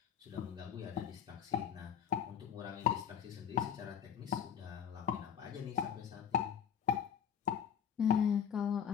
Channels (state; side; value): quieter; right; 8.3 dB